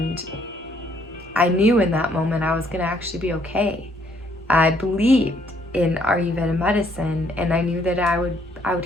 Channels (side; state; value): both; normal; correlation 0.67